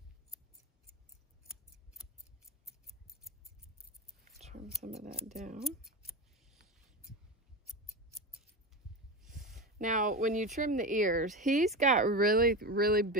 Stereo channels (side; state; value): both; normal; correlation 0.21